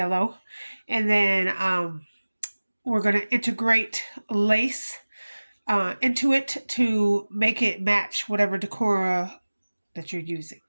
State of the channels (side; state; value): both; inverted; correlation -1.00